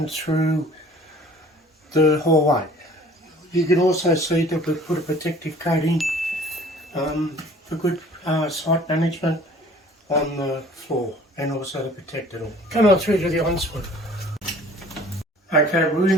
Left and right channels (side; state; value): both; normal; correlation 0.51